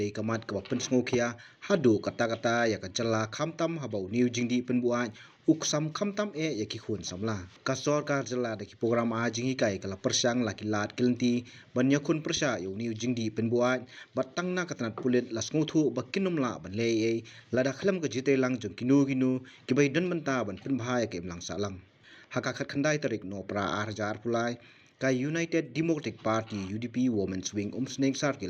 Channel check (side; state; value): both; identical; correlation 1.00